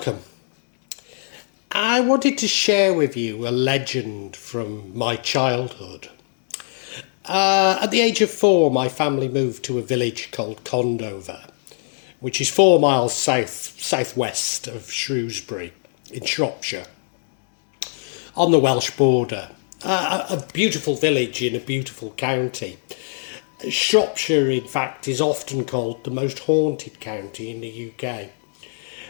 I wanted to share with you a legend from my childhood. At the age of 4, my family moved to a village called Condover, which is 4 miles southwest of Shrewsbury in Shropshire, on the Welsh border. A beautiful village in a beautiful county. Shropshire, in fact, is often called the most haunted county in the UK.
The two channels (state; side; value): silent; right; digital silence